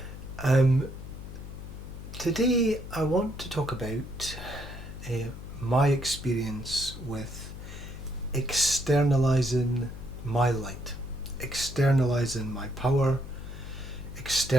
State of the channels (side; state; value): left; noise; hum, 11 dB below the sound